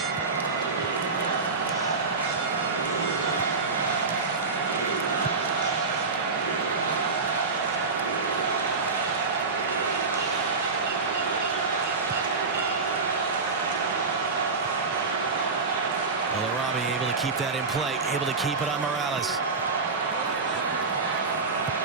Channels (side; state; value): left; quieter; 4.3 dB